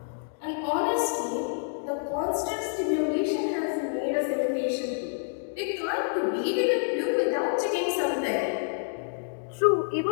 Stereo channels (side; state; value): right; silent; digital silence